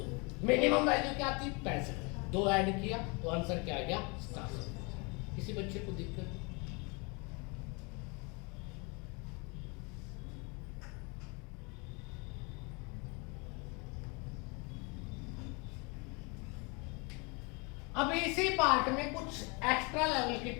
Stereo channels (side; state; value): right; quieter; 30.5 dB